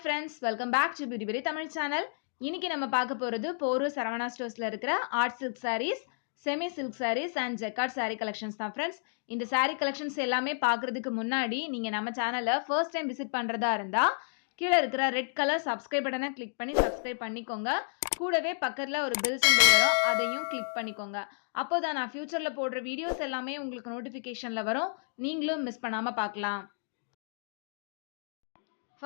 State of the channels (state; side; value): silent; right; digital silence